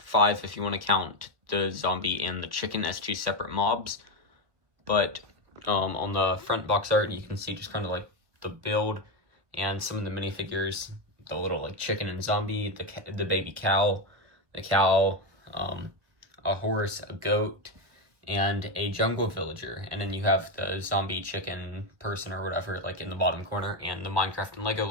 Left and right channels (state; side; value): late; left; 1.4 ms